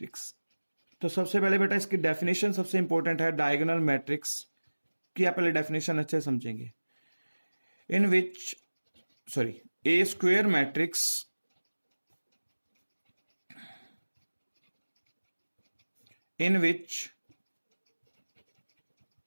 तो सबसे पहले बेटा इसकी डेफिनेशन सबसे इंपॉर्टेंट है। डायगोनल मैट्रिक्स की आप पहले डेफिनेशन अच्छे समझेंगे। In which a square matrix in which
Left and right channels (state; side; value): inverted; both; correlation -1.00